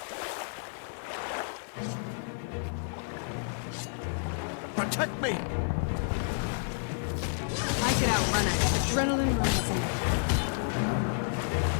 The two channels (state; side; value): silent; right; digital silence